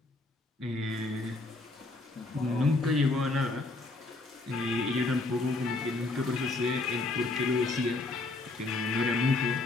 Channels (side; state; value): right; quieter; 3.2 dB